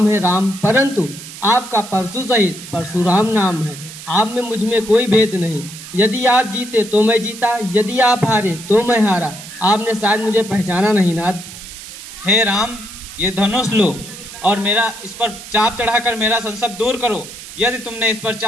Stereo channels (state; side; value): noise; right; hiss, 14 dB below the sound